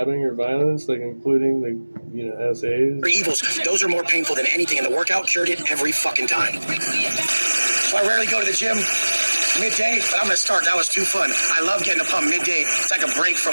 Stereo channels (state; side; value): inverted; both; correlation -1.00